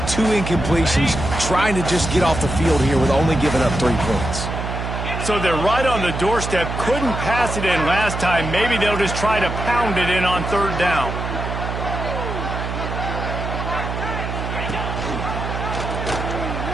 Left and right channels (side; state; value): right; noise; hum, 5 dB below the sound